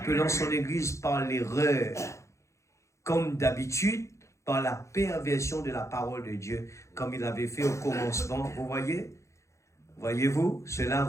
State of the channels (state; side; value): late; right; 0.14 ms